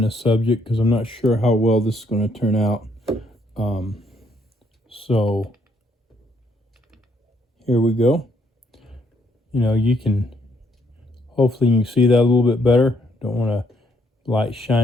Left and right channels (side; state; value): both; normal; correlation 0.71